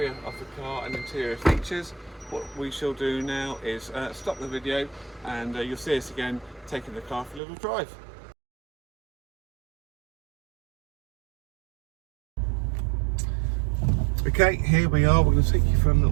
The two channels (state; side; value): drops out; left; at 7.4 s